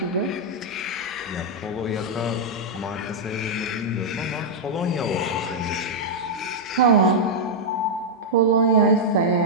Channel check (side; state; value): both; normal; correlation -0.05